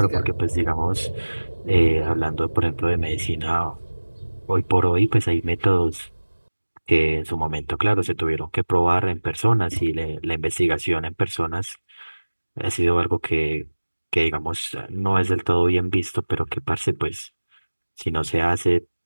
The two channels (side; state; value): both; inverted; correlation -1.00